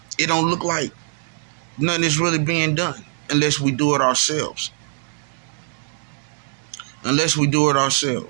it don't look like nothing is really being done unless we do it ourselves. Unless we do it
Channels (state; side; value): silent; left; 57 dB below the other